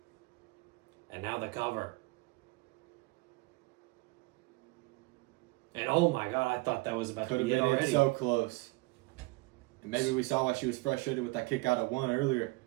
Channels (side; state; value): left; quieter; 23.9 dB